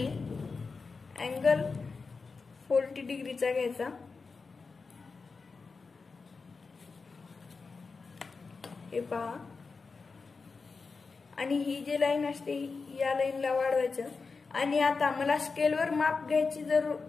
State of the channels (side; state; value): right; quieter; 4.5 dB